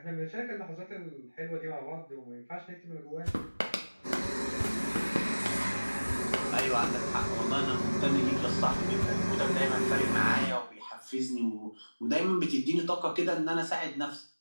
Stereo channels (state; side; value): inverted; both; correlation -1.00